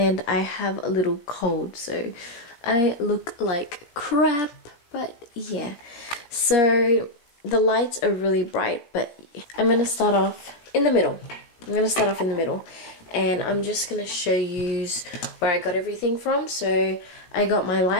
I have a little cold, so I look like crap, but yeah. So the lights are really bright, but I'm going to start off in the middle. And I'm just going to show you where I got everything from. So I got my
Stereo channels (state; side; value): late; right; 17 ms